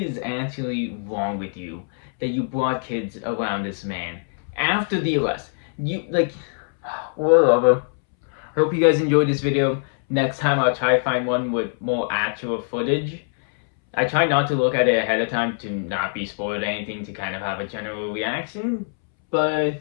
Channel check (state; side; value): silent; right; 63 dB below the other